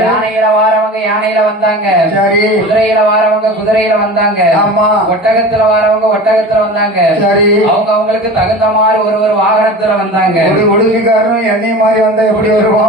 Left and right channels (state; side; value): normal; both; correlation 0.34